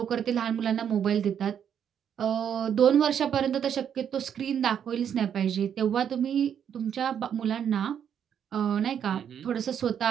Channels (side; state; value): left; quieter; 8.6 dB